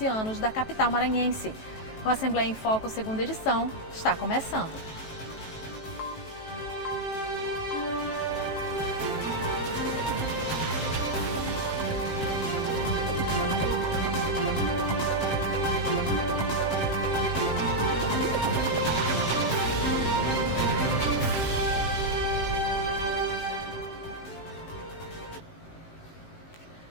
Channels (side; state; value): right; late; 7.5 ms